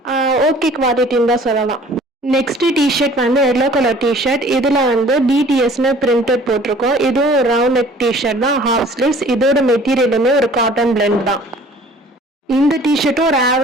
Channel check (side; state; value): both; normal; correlation 0.50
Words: ஓகே குவாலிட்டின்னு தான் சொல்லலாம். நெக்ஸ்ட் டிஷர்ட் வந்து எல்லோ கலர் டிஷர்ட். இதில் வந்து பிடிஎஸ்னு பிரிண்டட் போட்டிருக்கோம். இதுவும் ரவுண்ட் நெக் டிஷர்ட் தான், ஹாஃப் ஸ்லீவ்ஸ். இதோட மெட்டீரியலுமே ஒரு காட்டன் பிளெண்ட் தான். இந்த டிஷர்ட்டும் ஒரு